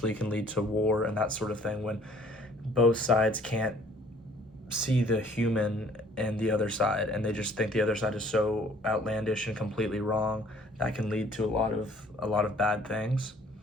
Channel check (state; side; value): normal; both; correlation 0.56